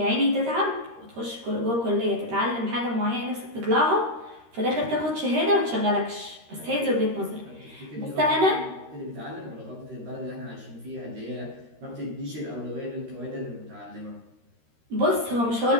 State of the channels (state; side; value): late; left; 13 ms